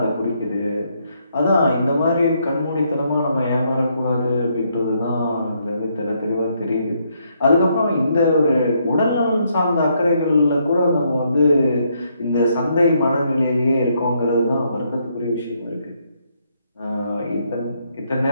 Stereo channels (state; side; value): inverted; both; correlation -0.74